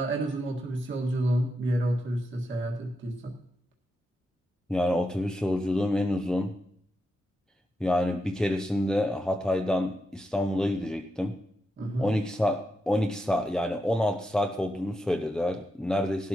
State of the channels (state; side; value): normal; both; correlation 0.86